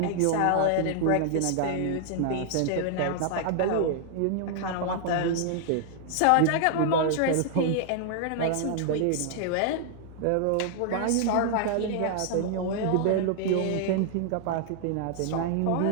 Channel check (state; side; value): different; both; correlation -0.01